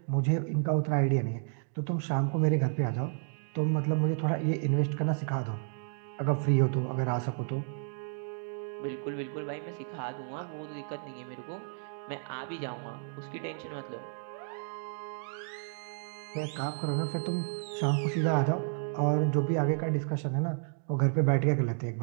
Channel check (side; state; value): left; silent; 57 dB below the other